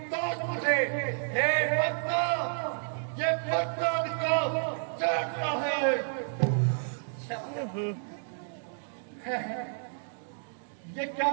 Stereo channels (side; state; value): left; silent; digital silence